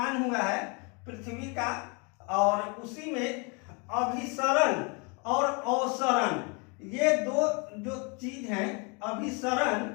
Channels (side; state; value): right; quieter; 32.4 dB